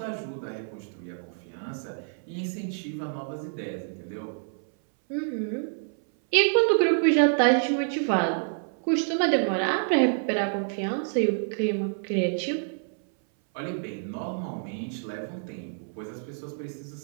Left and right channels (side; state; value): left; silent; 60 dB below the other